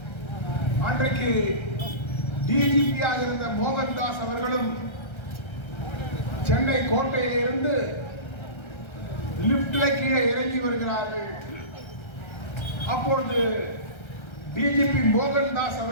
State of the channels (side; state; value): right; late; 1.3 ms